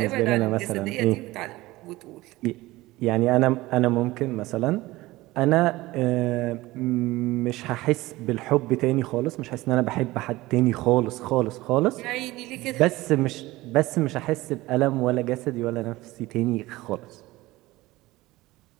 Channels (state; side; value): quieter; left; 19.0 dB